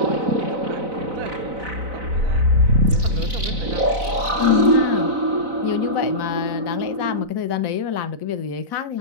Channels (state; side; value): late; left; 4.0 ms